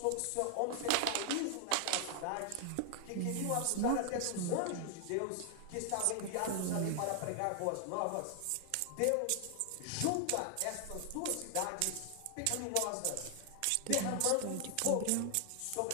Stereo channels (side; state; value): both; different; correlation 0.00